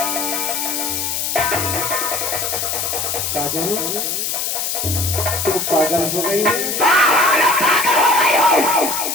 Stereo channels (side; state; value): left; noise; hiss, 1 dB below the sound